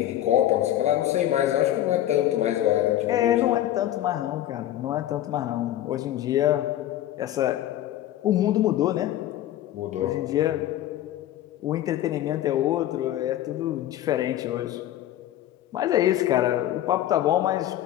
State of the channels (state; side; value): quieter; right; 13.0 dB